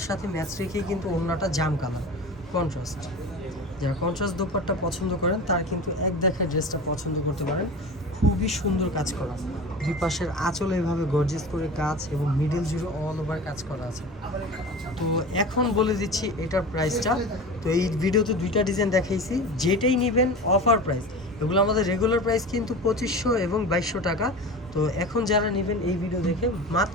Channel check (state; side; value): normal; both; correlation 0.33